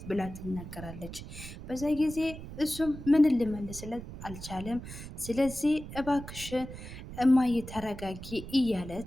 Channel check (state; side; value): noise; right; rumble, 11 dB below the sound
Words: ብላ ትናገራለች። በዛ ጊዜ እሱም ምን ልመልስለት አልቻለም። ስለዚህ እባክሽ እማዬ ተረጋጊ እያለ